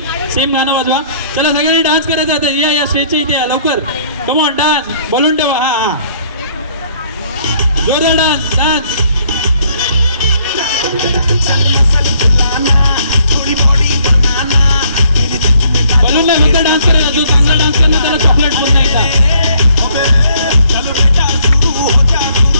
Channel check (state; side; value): inverted; both; correlation -0.64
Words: गाणं वाजवा. चला सगळ्यांनी डान्स करायचा आता. या स्टेजच्या इथे या लवकर. Come on dance. बोलून ठेवा. हा जोरदार डान्स. बोलून नाही फक्त डान्स करायचा. जो चांगला डान्स करणार त्याला चॉकलेट पण नाही का?